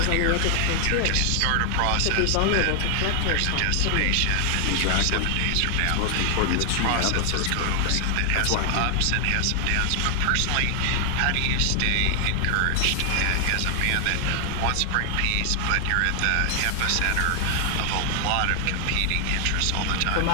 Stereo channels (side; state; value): both; different; correlation 0.00